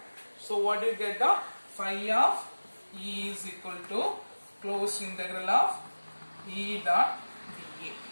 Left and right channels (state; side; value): inverted; both; correlation -1.00